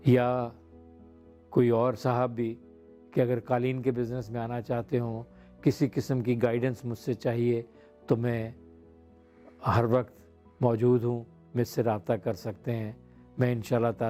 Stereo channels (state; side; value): identical; both; correlation 1.00